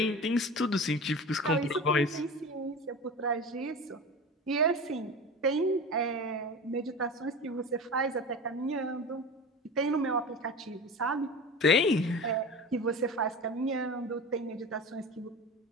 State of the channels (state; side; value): normal; both; correlation 0.31